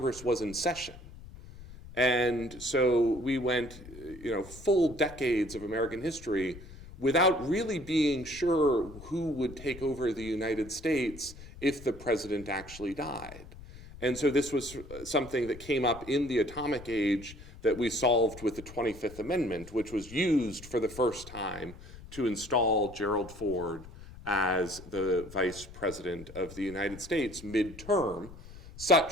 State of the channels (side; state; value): left; noise; rumble, 16 dB below the sound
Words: was in session. And so we went, full decades of American history without really being sure who would take over the United States if the president actually died. And so this was something that came up in the atomic age that we solved with the 25th Amendment, which was used for the first time to install Gerald Ford as the vice president of the United States midterm,